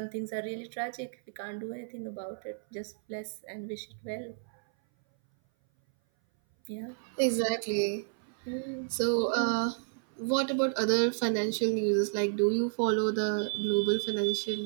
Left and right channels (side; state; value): left; silent; 57 dB below the other